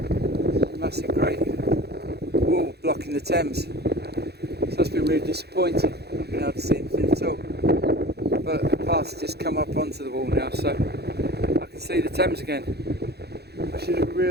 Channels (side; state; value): left; late; 0.48 ms